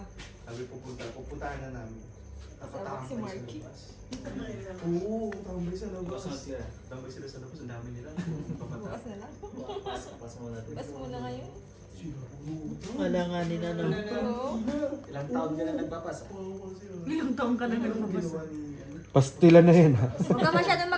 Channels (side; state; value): both; identical; correlation 1.00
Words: Sabi pupuntahan na namin. Kasama si Marky. Oo, tambay sa labas. Tambay sila sa labas, ang dami nila. Bukas na lang. Bukas muna ngayon. Wala nga nila no. Oo. Ilang taon ka na nagpapasa? Ilang taong ka na Ginawa ni Pastila na yan ha. Huwag ka masyadong